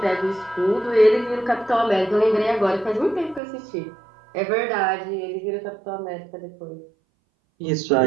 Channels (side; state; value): left; drops out; at 3.4 s